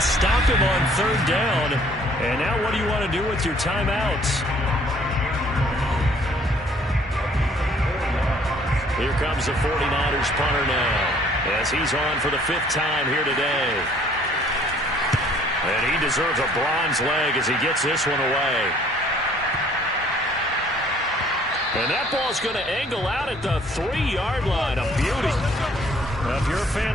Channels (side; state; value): both; normal; correlation 0.58